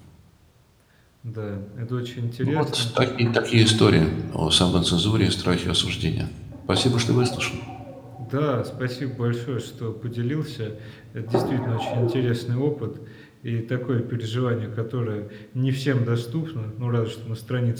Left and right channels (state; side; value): identical; both; correlation 1.00